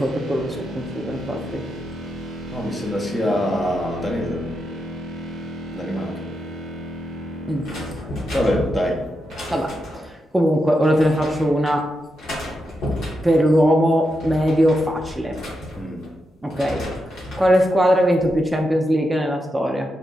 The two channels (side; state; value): both; normal; correlation 0.85